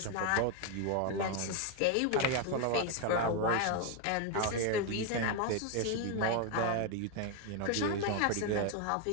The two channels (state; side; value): different; both; correlation 0.01